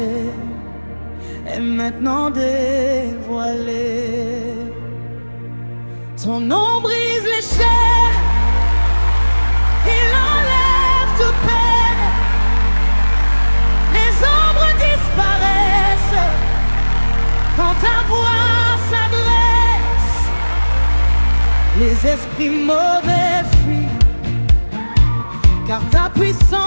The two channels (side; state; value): both; inverted; correlation -1.00